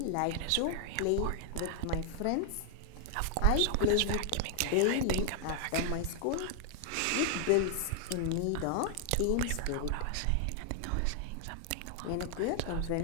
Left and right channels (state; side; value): different; both; correlation 0.00